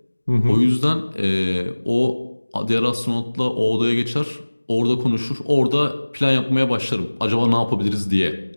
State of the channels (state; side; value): inverted; both; correlation -1.00